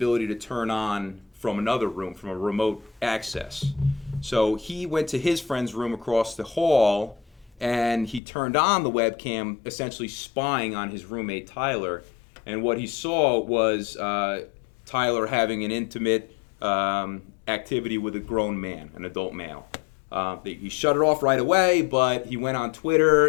to turn on from another room, from a remote access. So he went to his friend's room across the hall, and he turned on the webcam, essentially spying on his roommate, Tyler. And what he saw was Tyler having an intimate activity with a grown man, an adult male. He shut it off right away, but he went on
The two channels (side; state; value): right; drops out; at 8.2 s